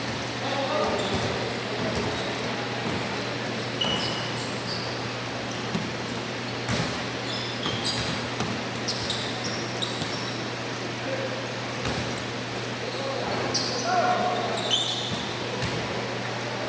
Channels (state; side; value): identical; both; correlation 1.00